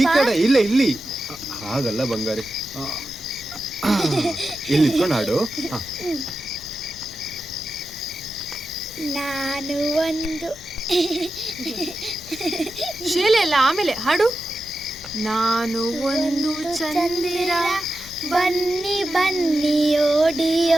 ಕಡೆ ಇಲ್ಲ ಇಲ್ಲಿ. ಹಾಗಲ್ಲ ಬಂಗಾರಿ, ಇಲ್ಲಿ ನಿಂತ್ಕೊಂಡು ಹಾಡು. ನಾನು ಒಂದು ಶೀಲೆ ಎಲ್ಲ ಆಮೇಲೆ ಹಾಡು. ನಾನು ಒಂದು ಚಂದಿರ, ಬನ್ನಿ ಬನ್ನಿ ಓಡಿ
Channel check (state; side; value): noise; left; rumble, 20 dB below the sound